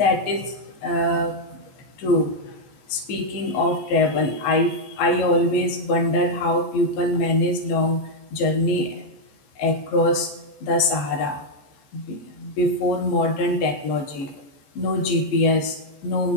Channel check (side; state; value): right; late; 14 ms